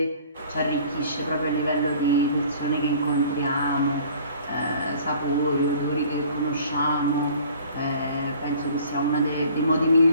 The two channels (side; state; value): both; inverted; correlation -0.51